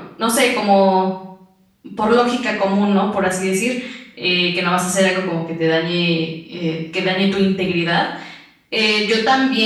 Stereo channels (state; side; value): identical; both; correlation 1.00